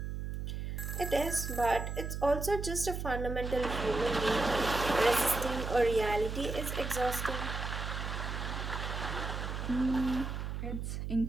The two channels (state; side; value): noise; right; hum, 4 dB below the sound